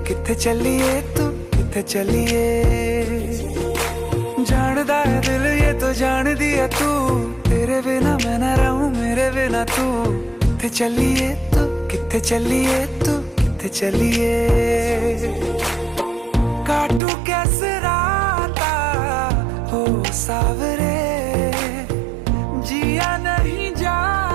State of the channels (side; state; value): left; drops out; at 17.0 s